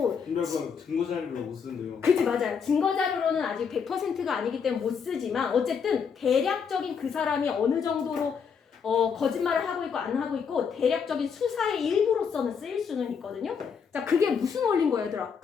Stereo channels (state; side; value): quieter; right; 6.5 dB